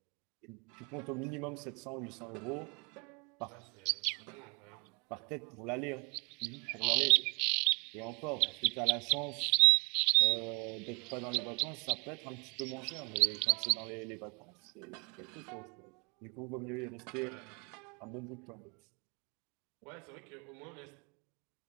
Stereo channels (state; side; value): quieter; left; 32.3 dB